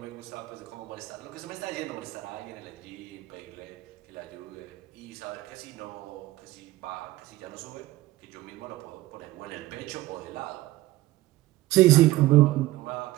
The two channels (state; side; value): quieter; left; 17.3 dB